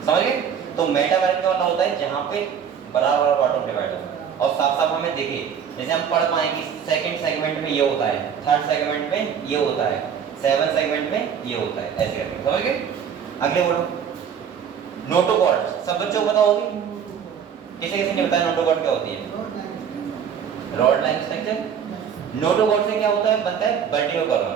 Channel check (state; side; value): quieter; left; 7.8 dB